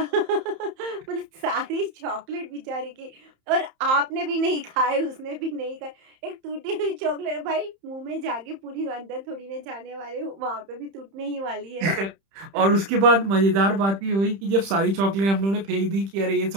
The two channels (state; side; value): late; left; 31 ms